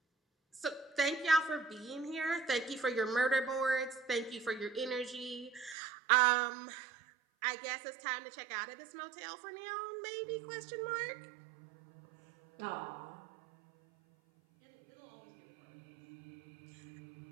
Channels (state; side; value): drops out; left; at 5.8 s